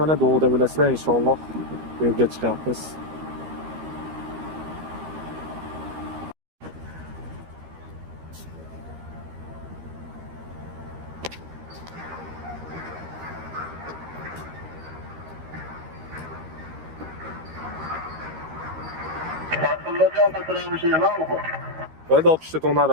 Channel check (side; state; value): left; late; 13 ms